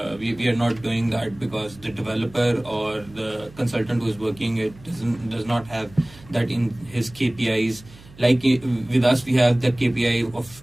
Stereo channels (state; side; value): noise; right; hum, 22 dB below the sound